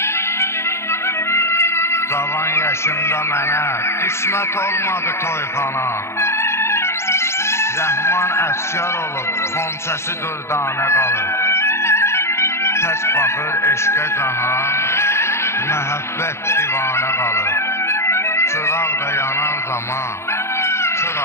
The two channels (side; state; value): right; late; 0.13 ms